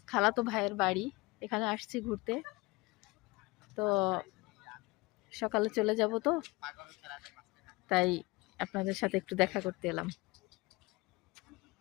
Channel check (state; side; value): quieter; right; 23.7 dB